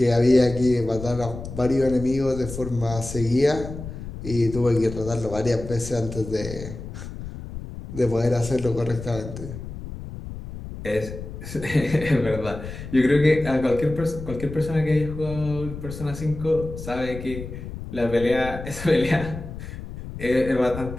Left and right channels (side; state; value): left; noise; rumble, 10 dB below the sound